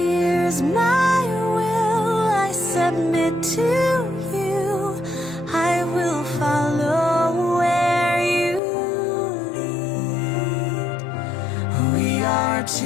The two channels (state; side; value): drops out; right; at 8.6 s